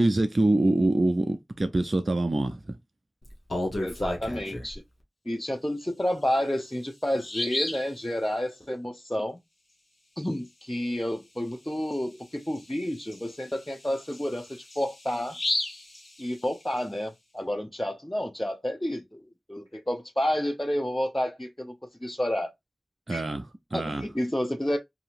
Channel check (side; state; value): both; normal; correlation 0.96